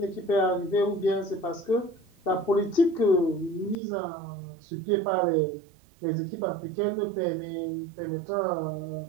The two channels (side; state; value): left; drops out; at 3.8 s